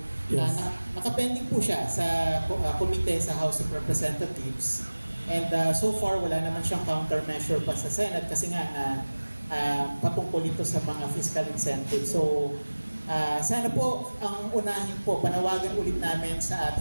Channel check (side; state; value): both; inverted; correlation -1.00